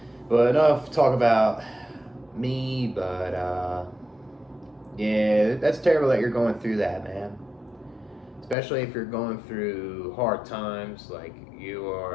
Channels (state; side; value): drops out; right; at 8.6 s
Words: But enough talk about me, but yeah, that's terrible that you're going through that, man. Especially if you're going through hard times, like you